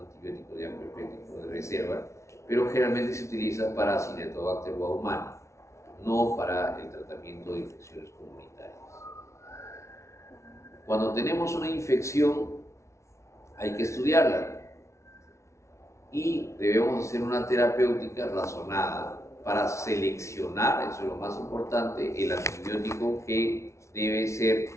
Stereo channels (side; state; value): right; late; 0.14 ms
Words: de amplio espectro de reserva, pero generalmente se utiliza para Acinetobacter baumannii, no para el tratamiento de infecciones comunitarias. Cuando tenemos una infección, hay que estudiarla y debemos hacer una terapéutica razonada para seleccionar, eso es lo más importante, el antibiótico que debe ser